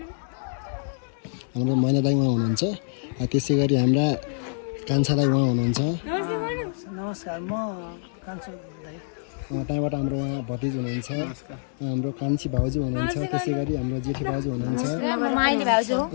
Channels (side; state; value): right; silent; 57 dB below the other